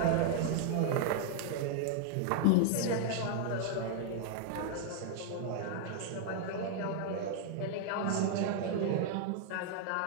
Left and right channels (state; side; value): different; both; correlation -0.01